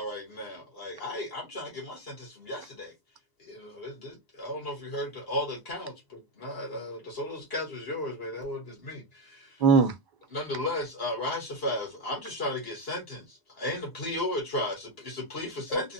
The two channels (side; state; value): right; late; 1.0 ms